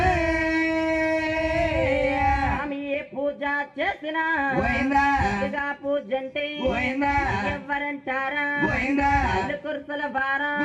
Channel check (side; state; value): both; identical; correlation 1.00